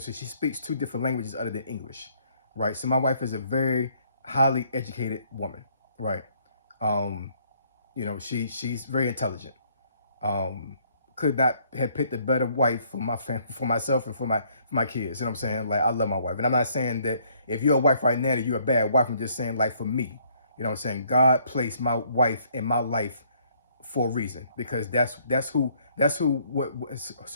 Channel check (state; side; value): inverted; both; correlation -0.65